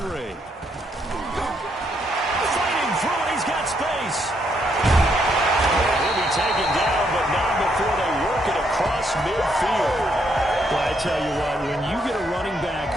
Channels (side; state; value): both; normal; correlation 0.74